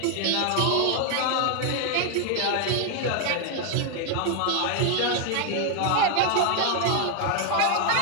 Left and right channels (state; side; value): different; both; correlation 0.00